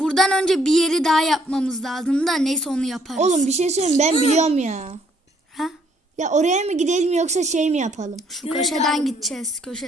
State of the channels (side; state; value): both; normal; correlation 0.66